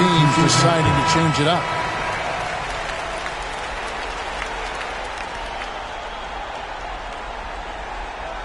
deciding to change it up.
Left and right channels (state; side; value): identical; both; correlation 1.00